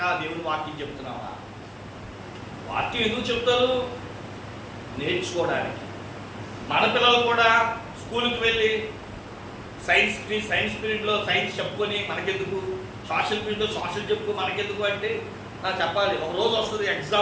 దేవుని వాక్యం చెప్తున్నావా? వాక్యం ఎందుకు చెప్తారు? నేర్చుకోవడానికి. మన పిల్లలు కూడా స్కూల్కి వెళ్ళి సైన్స్ పీరియడ్లో సైన్స్ చెప్పుకొని మనకెందుకు, సోషల్ పీరియడ్లో సోషల్ చెప్పుకో మనకెందుకు అంటే, నాకు చెప్పాలి. ఒక రోజు వస్తుంది,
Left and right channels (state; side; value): identical; both; correlation 1.00